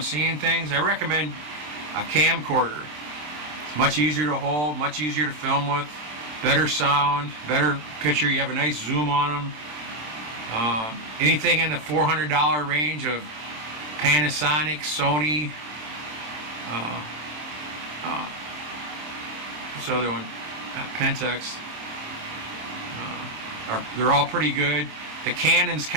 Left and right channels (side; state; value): left; late; 27 ms